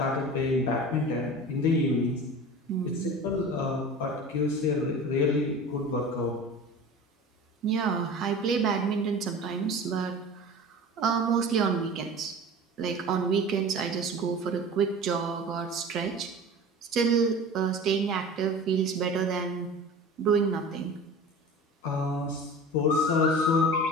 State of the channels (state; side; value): normal; both; correlation 0.37